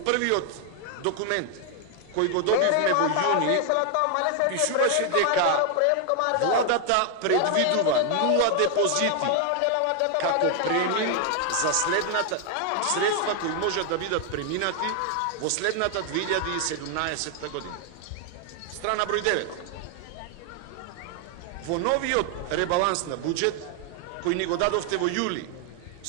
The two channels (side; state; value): both; different; correlation 0.00